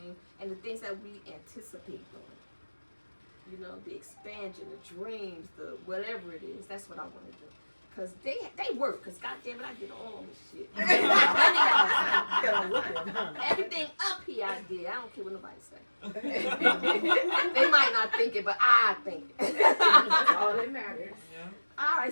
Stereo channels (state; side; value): inverted; both; correlation -1.00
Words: and the things that we anticipate doing. You know, the expansion, the dreams, the whatever it is. That's what I want to do. Because they work. Because goddamn it, I did all this shit. Everything up here I did. I don't care what nobody say. They might not think it, but I think it. That's all that matters. Yeah. All